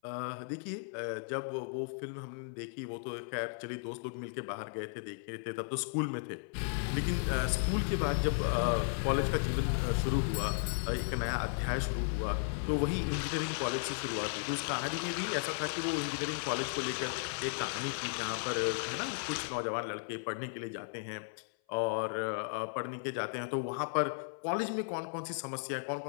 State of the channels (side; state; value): right; silent; 54 dB below the other